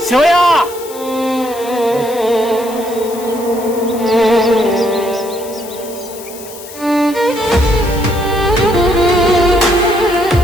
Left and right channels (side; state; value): left; noise; hiss, 16 dB below the sound